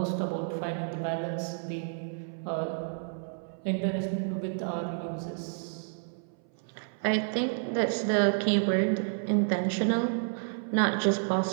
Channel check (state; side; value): silent; left; 58 dB below the other